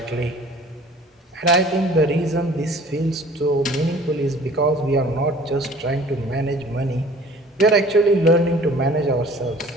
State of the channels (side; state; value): both; normal; correlation 0.49